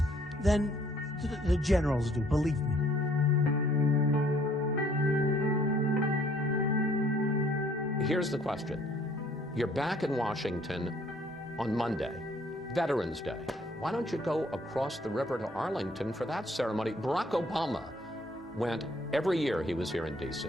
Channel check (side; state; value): both; normal; correlation 0.62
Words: than the generals do, believe me. Here's the question. You're back in Washington on Monday, Veterans Day. Why don't you go across the river to Arlington for that ceremony? Barack Obama went every year he was here in D.C.